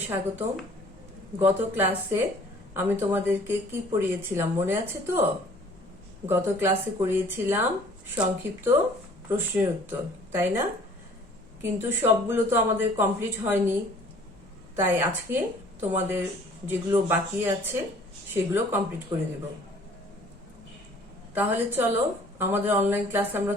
স্বাগতম। গত ক্লাসে আমি তোমাদেরকে কি পড়িয়েছিলাম মনে আছে তো? গত ক্লাসে করিয়েছিলাম সংক্ষিপ্ত প্রশ্নের উত্তর, তাই না? কিন্তু সবগুলো তো আমাদের কমপ্লিট হয়নি, তাই আজকে তোমাদের যেগুলো বাকি আছে সেগুলো কমপ্লিট করে দেব। তাহলে চলো আমাদের অনলাইন ক্লাস আমরা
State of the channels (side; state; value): both; normal; correlation 0.53